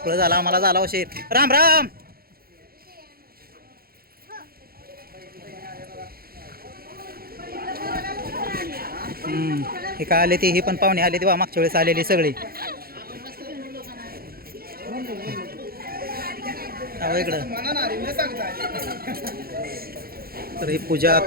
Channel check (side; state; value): left; late; 0.44 ms